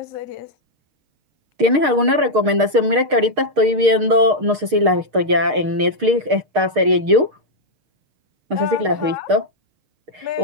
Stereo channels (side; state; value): left; late; 6.5 ms